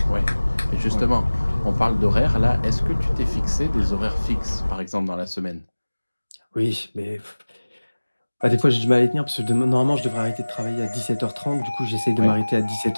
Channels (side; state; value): both; inverted; correlation -1.00